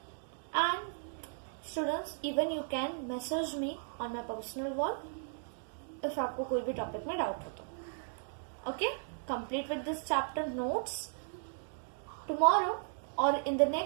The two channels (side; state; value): left; silent; digital silence